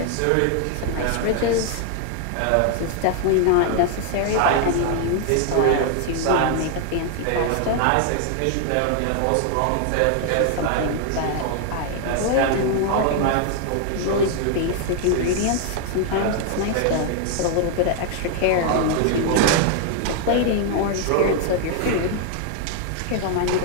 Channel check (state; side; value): different; both; correlation 0.00